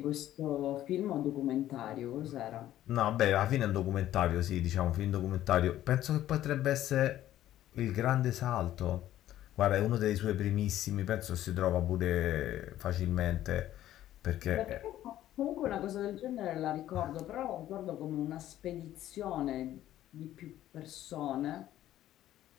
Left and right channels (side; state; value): right; quieter; 13.1 dB